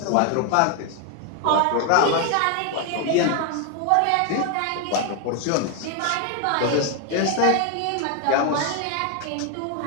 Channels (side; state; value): both; different; correlation 0.00